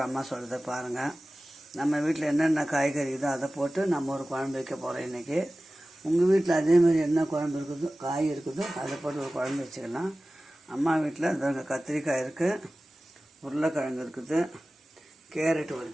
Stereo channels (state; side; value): normal; both; correlation 0.96